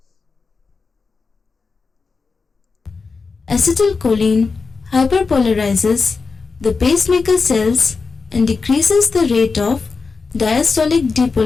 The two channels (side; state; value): right; quieter; 4.6 dB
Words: Acetylcholine hyperpolarizes the pacemaker cells and decreases the rate of diastolic